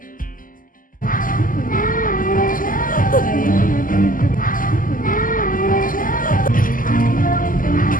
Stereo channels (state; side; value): late; right; 0.40 ms